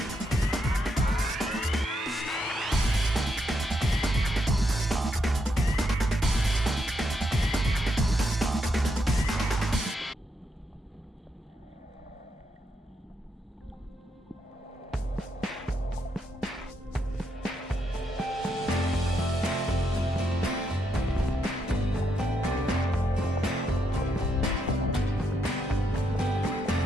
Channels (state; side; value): normal; both; correlation 0.79